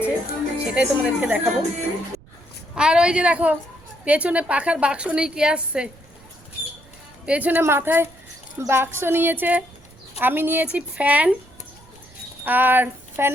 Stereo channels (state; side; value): noise; right; rumble, 26 dB below the sound